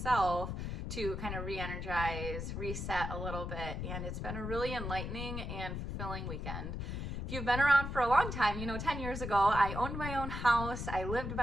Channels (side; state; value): left; noise; rumble, 4 dB below the sound